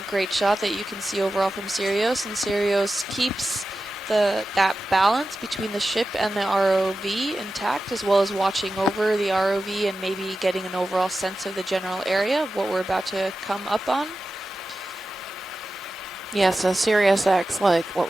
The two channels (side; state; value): both; normal; correlation 0.93